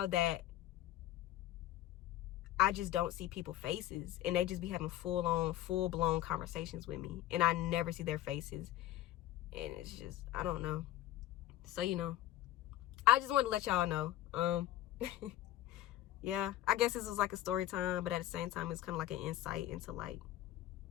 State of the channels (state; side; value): quieter; right; 13.9 dB